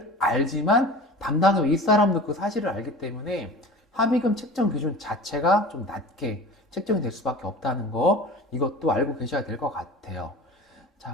알지만 담당의 윗사람도 그 사실을 알기 때문에 합의금 책정 기준 자체가 좀 낮게 책정이 될 수밖에 없다는 거, 이것도 알고 계셔야 될 것 같아요.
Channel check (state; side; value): normal; both; correlation 0.38